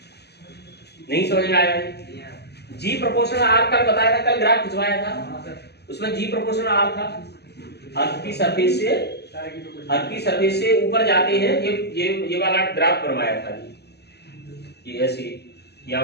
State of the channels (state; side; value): late; right; 0.48 ms